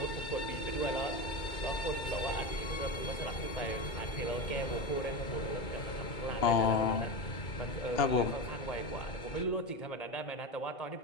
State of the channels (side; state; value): right; late; 2.2 ms